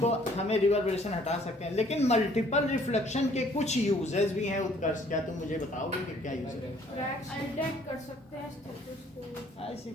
हमें रिवर्बरेशन हटा सकते हैं, लेकिन मल्टीपल रिफ्लेक्शन के कुछ यूजेस भी हैं. उत्कर्ष, क्या तुम मुझे बताओगे कि क्या यूज है? क्रैक्स डिटेक्ट कर सकते हैं स्टेटोस्कोप. ऐसी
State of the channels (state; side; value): normal; both; correlation 0.60